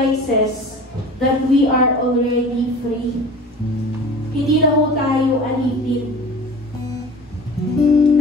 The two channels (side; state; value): both; normal; correlation 0.39